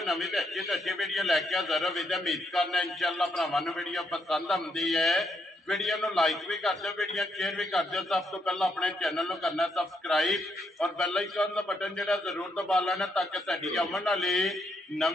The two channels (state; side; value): normal; both; correlation 0.77